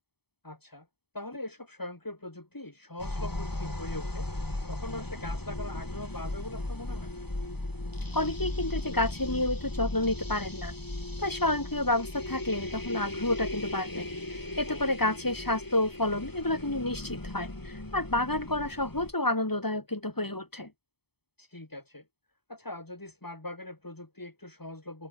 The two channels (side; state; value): right; late; 0.97 ms